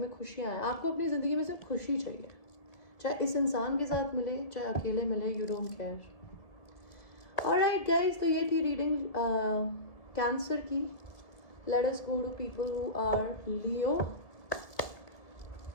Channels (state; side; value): late; right; 1.7 ms